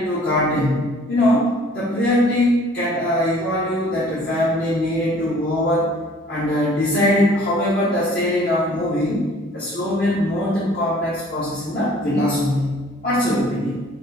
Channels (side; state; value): both; normal; correlation 0.53